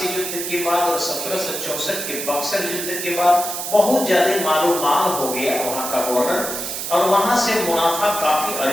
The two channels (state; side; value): noise; right; hiss, 5 dB below the sound